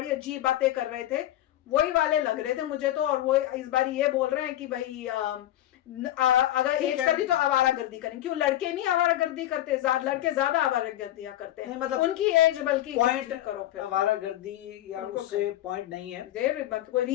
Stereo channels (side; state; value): right; quieter; 13.6 dB